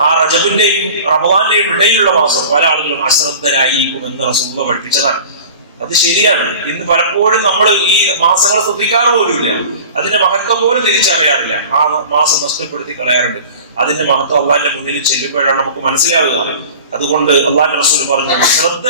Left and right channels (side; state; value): both; inverted; correlation -0.40